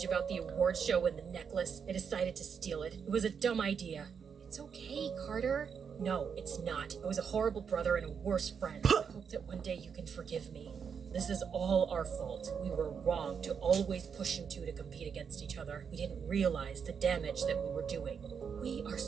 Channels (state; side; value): quieter; left; 6.7 dB